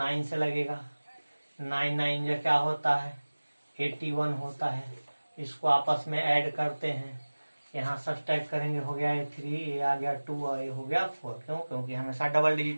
से लगेगा। 9 9 जो क्या होता है 81 होता है। इसको आपस में ऐड करते हैं, यहाँ सब्सट्रैक्ट करेंगे, हो गया ये 3, ये आ गया 2 और ये हो गया 4। क्यों? क्योंकि हमेशा डबल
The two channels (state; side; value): inverted; both; correlation -1.00